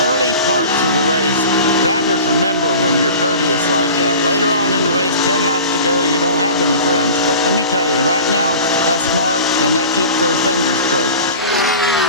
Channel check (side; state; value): both; inverted; correlation -0.38